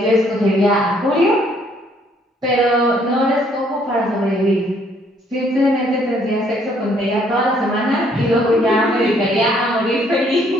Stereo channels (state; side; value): normal; both; correlation 0.65